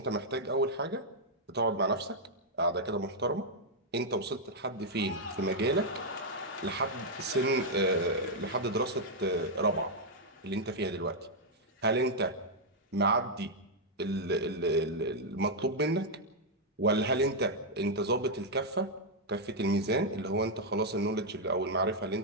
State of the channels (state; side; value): normal; both; correlation -0.03